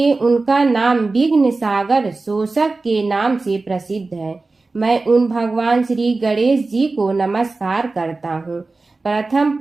उनका नाम विघ्न सागर शोषक के नाम से प्रसिद्ध है। मैं उन भगवान श्री गणेश जी को नमस्कार करता हूँ। प्रथम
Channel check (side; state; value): left; quieter; 3.6 dB